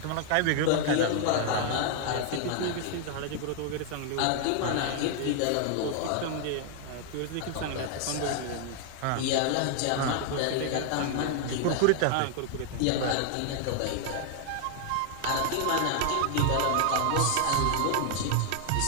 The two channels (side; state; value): both; different; correlation 0.00